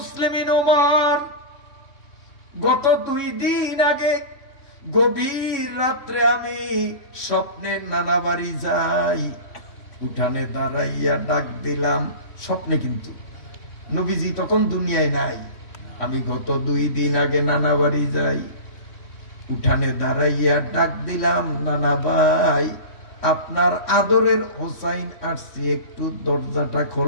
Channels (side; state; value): right; late; 3.6 ms